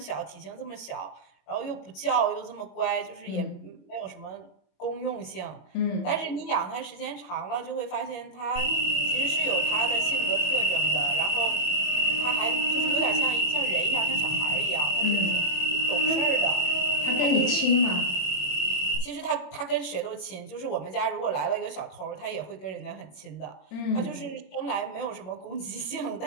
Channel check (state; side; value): late; right; 21 ms